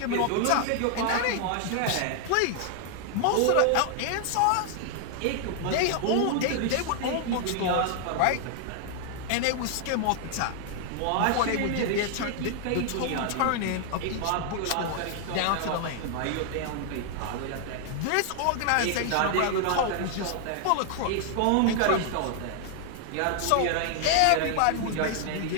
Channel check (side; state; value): both; different; correlation 0.00